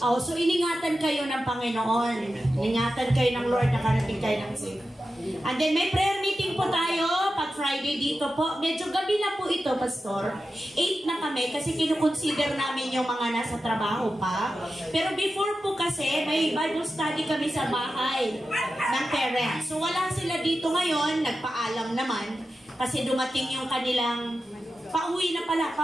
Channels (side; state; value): both; normal; correlation 0.92